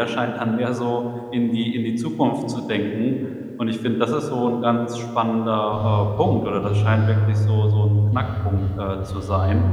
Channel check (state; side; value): identical; both; correlation 1.00